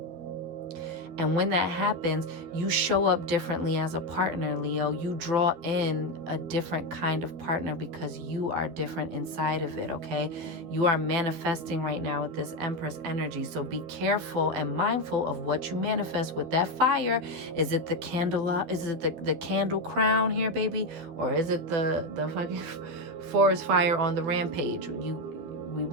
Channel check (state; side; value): late; left; 12 ms